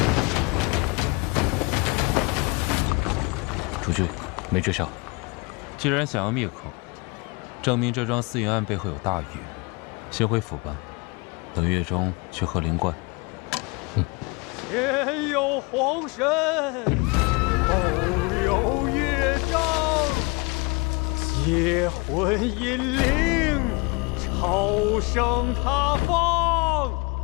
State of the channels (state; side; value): quieter; right; 27.9 dB